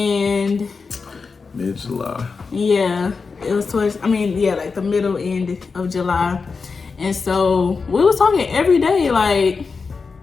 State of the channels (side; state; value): right; quieter; 4.8 dB